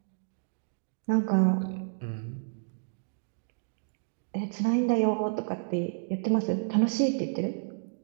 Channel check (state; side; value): silent; left; digital silence